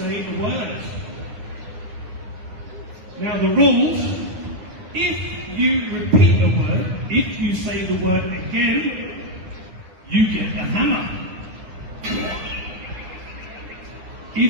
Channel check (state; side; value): late; left; 10 ms